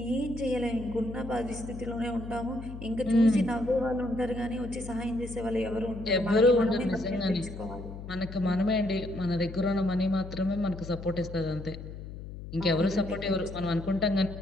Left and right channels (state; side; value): noise; left; hum, 11 dB below the sound